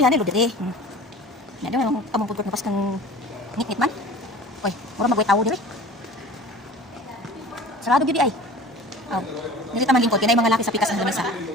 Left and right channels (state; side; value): normal; both; correlation 0.41